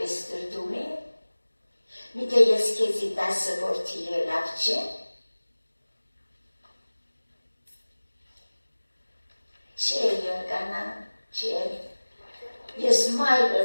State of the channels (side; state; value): both; inverted; correlation -1.00